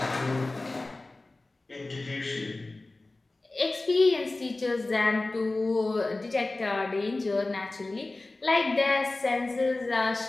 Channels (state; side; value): quieter; right; 3.1 dB